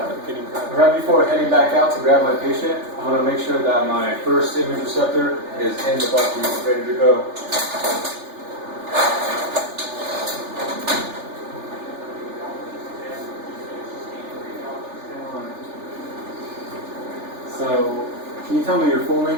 getting prepped. Right before heading back out to grab my patient, I want to make sure that my first image receptor is in the bucky, ready to go. So, can you tell me your full name,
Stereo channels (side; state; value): left; late; 3.4 ms